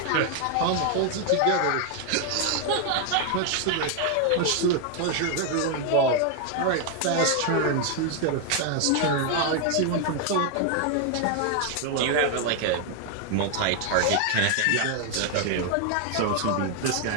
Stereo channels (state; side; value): different; both; correlation 0.00